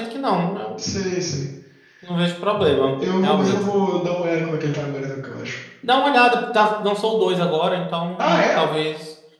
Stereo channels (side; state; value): both; identical; correlation 1.00